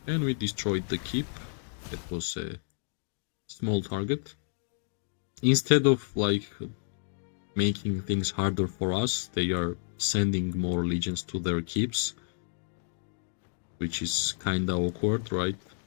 And we destroyed the keep. That was a small target. Instead of like making things harder for us, they are sending more legions to their keeps, which is kinda awkward, right?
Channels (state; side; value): silent; right; digital silence